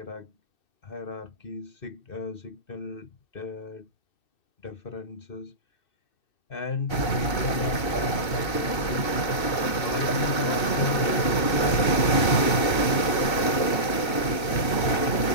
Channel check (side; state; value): right; late; 2.6 ms